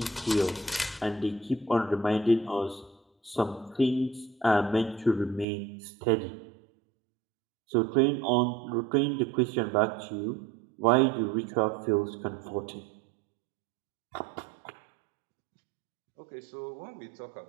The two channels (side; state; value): left; drops out; at 5.5 s